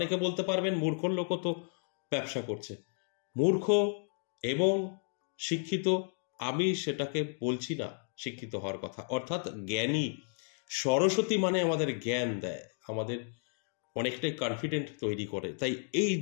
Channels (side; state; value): right; silent; 56 dB below the other